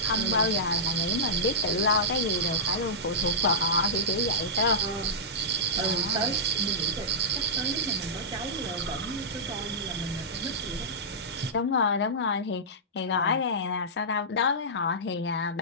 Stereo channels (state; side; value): normal; both; correlation -0.13